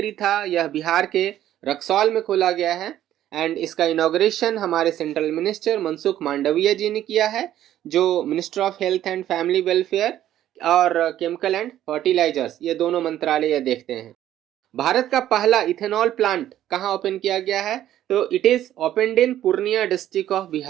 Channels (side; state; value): left; quieter; 12.3 dB